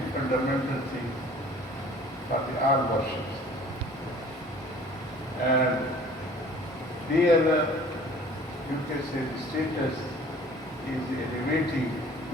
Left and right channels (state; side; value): normal; both; correlation 0.50